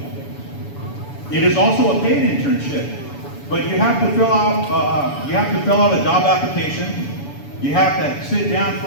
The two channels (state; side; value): late; right; 7.0 ms